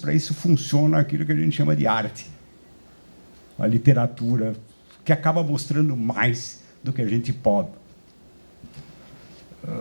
isso, funciona aquilo que a gente chama de arte, a literatura, que acaba mostrando mais do que a gente pode.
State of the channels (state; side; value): inverted; both; correlation -1.00